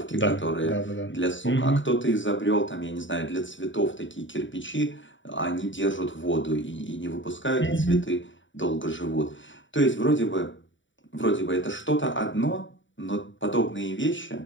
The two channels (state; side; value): late; right; 0.55 ms